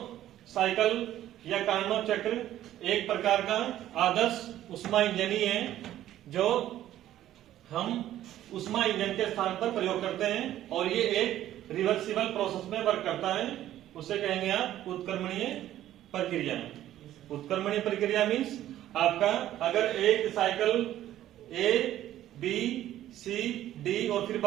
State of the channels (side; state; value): left; quieter; 12.8 dB